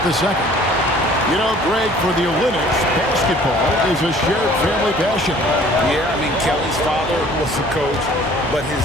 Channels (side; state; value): both; normal; correlation 0.52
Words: the second. You know, Greg, for the Olympics, basketball is a shared family passion. Yeah, I mean, Kelly's father was a coach, but his